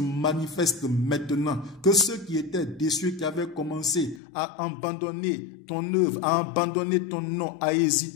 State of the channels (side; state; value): right; drops out; at 4.2 s